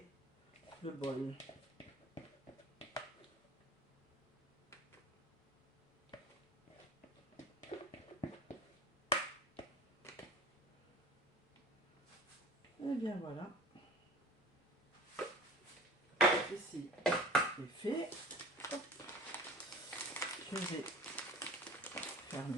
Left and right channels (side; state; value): both; normal; correlation 0.40